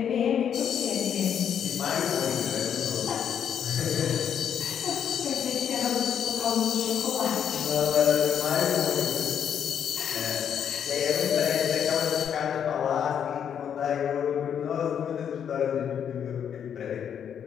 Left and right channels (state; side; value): quieter; right; 8.4 dB